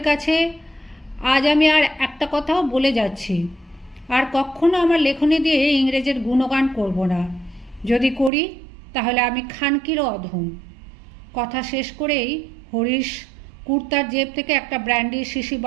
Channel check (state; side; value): drops out; left; at 8.3 s